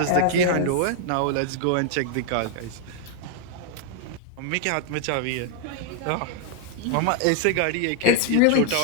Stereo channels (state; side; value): different; both; correlation 0.00